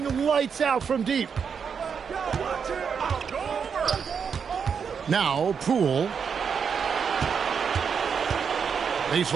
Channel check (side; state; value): left; quieter; 6.5 dB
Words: lights out from deep. Now, Poole.